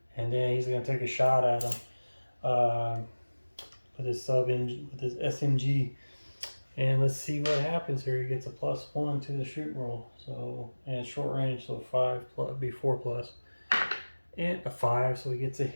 and then he's gonna take a shot at him with his SMG. And let's see what happens here. He gets a +1 to the shoot roll. So, and short range, so 5 plus, be 4+, and a 5. So he gets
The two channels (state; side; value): inverted; both; correlation -1.00